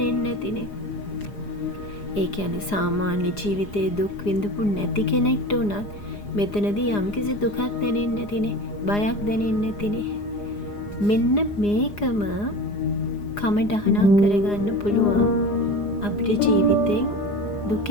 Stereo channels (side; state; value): right; late; 4.9 ms